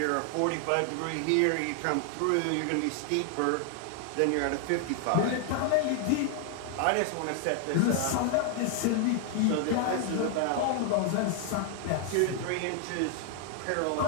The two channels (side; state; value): both; different; correlation 0.00